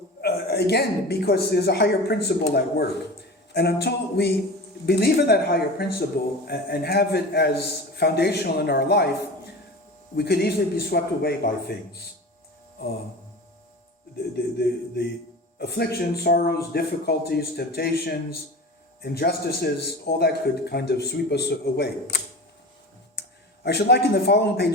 Again, because there's a higher principle at work. And until we believe in that higher principle and have it as foundational in our life, we could easily be swept away by things. The afflictions, sorrows, difficulties, temptations, injustices, all that could kind of sweep us away. I should like in the following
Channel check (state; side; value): normal; both; correlation 0.33